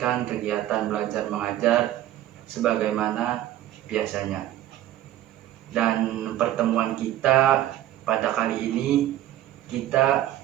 kegiatan belajar mengajar sebagaimana biasanya. Dan pertemuan kita pada kali ini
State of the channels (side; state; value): left; quieter; 13.3 dB